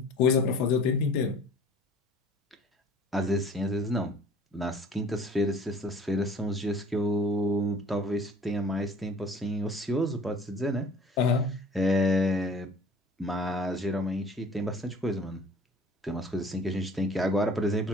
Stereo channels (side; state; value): both; normal; correlation 0.48